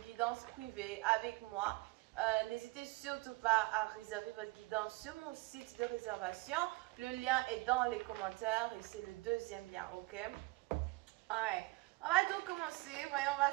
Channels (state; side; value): quieter; left; 22.6 dB